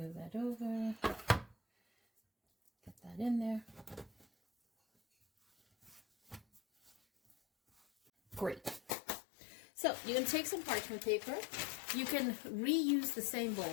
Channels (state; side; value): drops out; right; at 8.9 s